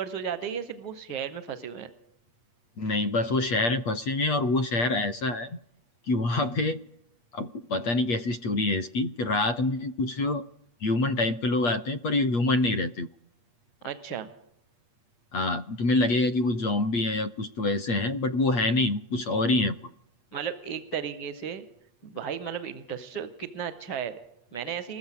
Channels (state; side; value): late; right; 8.5 ms